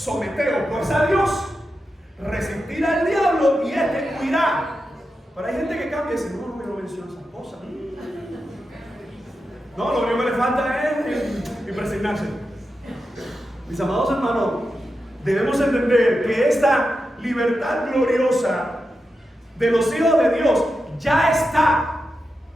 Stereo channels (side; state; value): both; normal; correlation 0.89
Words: pues a Dios, resistir al diablo y éste huirá. Pero hay gente que cambia y dice: no me menciona esas cosas. No, lo único que le falta es impresionarse. Mis amados hermanos, debemos entender que esta libertad gloriosa de los hijos de Dios ya está